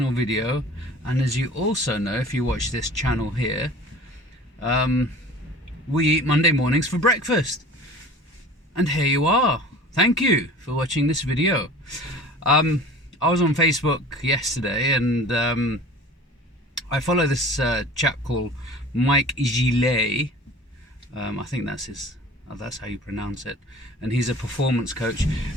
video. And as you also know, if you watch this channel here, we eat Monday mornings for breakfast. And here you are. Thank you for watching this video. I was on Facebook yesterday and I follow this chap called Mike Gillet. I think that's how you pronounce it. And he's a performance coach.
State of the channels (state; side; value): normal; both; correlation 0.42